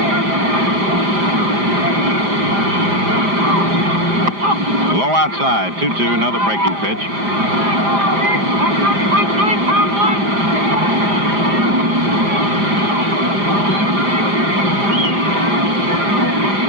Low outside. 2-2. Another breaking pitch.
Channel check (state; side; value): late; left; 5.0 ms